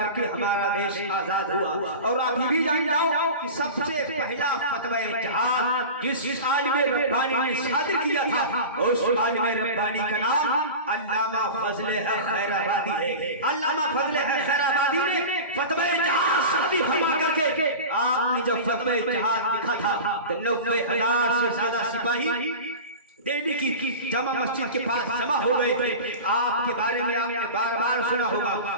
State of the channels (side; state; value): both; inverted; correlation -0.31